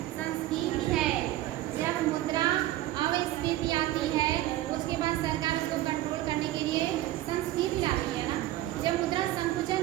संस्फीति है जब मुद्रा अविस्फीति आती है, उसके बाद सरकार इसको कंट्रोल करने के लिए संस्फीति आती है ना। जब मुद्रा संकुचन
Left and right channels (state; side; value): quieter; left; 15.1 dB